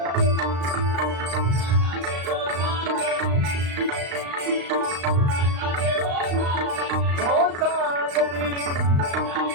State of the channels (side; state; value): left; late; 35 ms